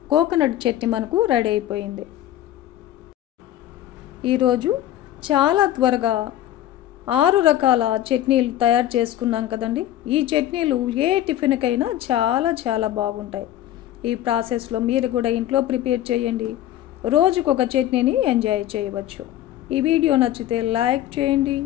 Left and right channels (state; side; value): quieter; right; 12.8 dB